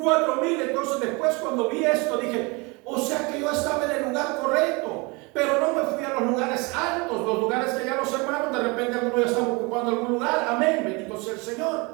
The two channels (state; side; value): quieter; left; 27.7 dB